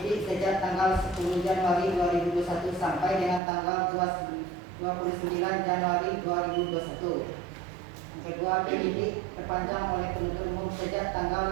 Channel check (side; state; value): left; drops out; at 3.4 s